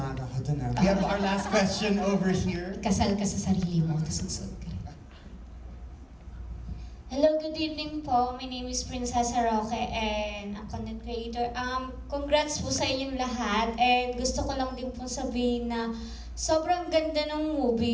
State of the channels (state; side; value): identical; both; correlation 1.00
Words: ako dun. We have our last question over here. Kasal ka sa sarili mo, tapos susunod ka. Hello, good evening po. My name is Princessa Roque and a content creator. Congrats po sa inyong lahat and gusto ko lang din po sabihin na sobrang ganda ng